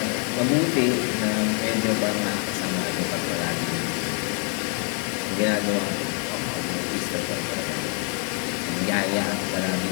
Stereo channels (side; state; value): right; quieter; 39.5 dB